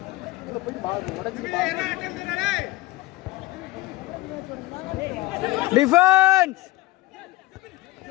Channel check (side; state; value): right; quieter; 18.7 dB